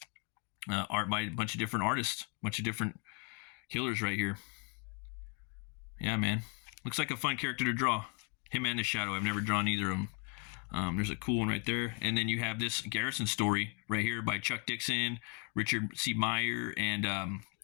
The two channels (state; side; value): quieter; right; 36.8 dB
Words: art by a bunch of different artists, a bunch of different killers right here. Yeah, man. Looks like a fun character to draw. Him and the Shadow. I've never drawn either of them. There's a cool one right there. And then you have this Garrison story right here by Chuck Dixon, Richard C. Meyer, and